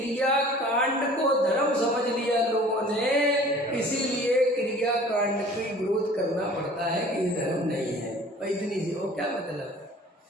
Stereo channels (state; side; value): normal; both; correlation 0.48